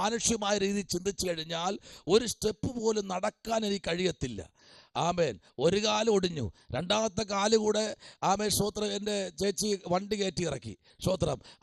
രീതിയിൽ ചിന്തിച്ചു കഴിഞ്ഞാൽ ഒരു സ്റ്റെപ്പ് പോലും നടക്കാൻ എനിക്ക് കഴിയത്തില്ല. ആമേൻ. ഒരു കാല് ഒടിഞ്ഞു, രണ്ടാമത്തെ കാല് കൂടെ ആമേൻ സ്തോത്രം എൻ്റെ ചേച്ചി വണ്ടി കയറ്റി ഇറക്കി. സ്തോത്രം.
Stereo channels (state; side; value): identical; both; correlation 1.00